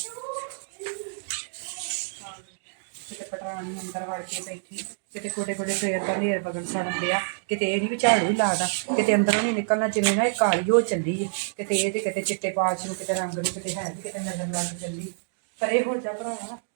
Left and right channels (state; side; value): silent; left; digital silence